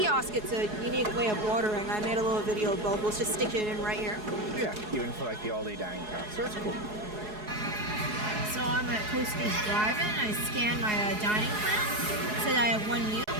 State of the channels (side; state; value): left; late; 4.7 ms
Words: it's a unique way of ordering. I made a little video of both. Let's just stick it in right here. Yeah, even for like the Olde dining car. So it's cool. So I'm at Coaster's Drive-In. I scanned my dining plan. It said I have 1 meal,